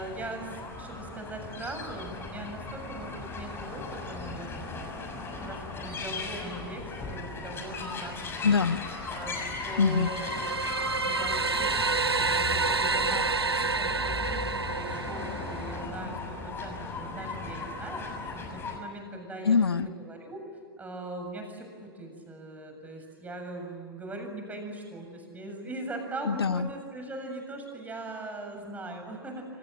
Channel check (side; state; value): both; normal; correlation -0.09